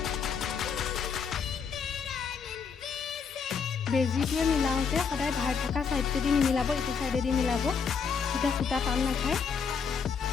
বেজিটোৱে মিলাওঁতে সদায় ধাৰ থকা ছাইডটোদি নিমিলাব ইটো ছাইডেদি মিলাব তেতিয়া সূতা টান নাখায়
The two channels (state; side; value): quieter; right; 6.1 dB